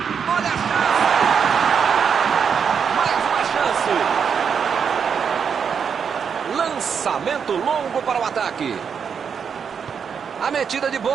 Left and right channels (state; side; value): quieter; left; 6.8 dB